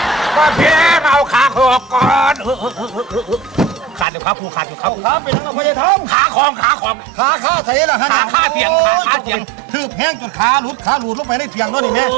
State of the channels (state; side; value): drops out; left; at 4.0 s